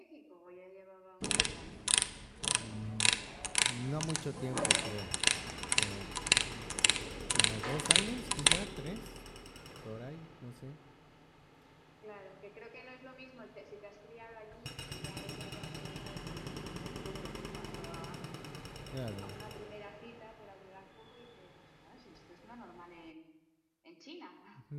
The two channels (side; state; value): both; identical; correlation 1.00